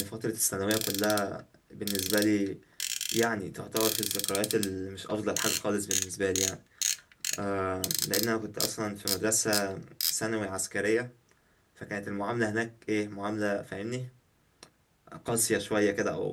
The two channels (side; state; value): both; identical; correlation 1.00